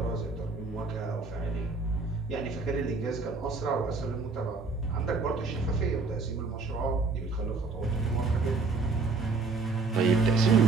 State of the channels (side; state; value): left; quieter; 4.1 dB